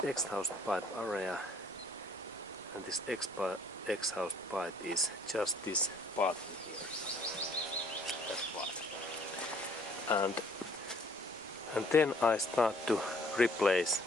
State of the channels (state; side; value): noise; right; rumble, 27 dB below the sound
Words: exhaust pipe area and this exhaust pipe is just this part in here. That part. And then I start to replace